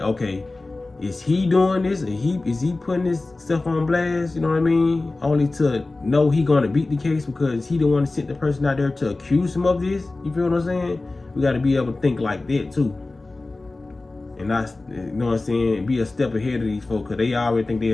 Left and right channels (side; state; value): right; quieter; 3.2 dB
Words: okay, is he doing this? Is he putting this stuff on blast, you know what I mean? Only to know he gonna beat the case because he the one to send the person out there to accuse him of this, you feel what I'm saying? We gotta be able to think like that too. And not, you know what I'm saying, be a step ahead of these folks, because they already think they're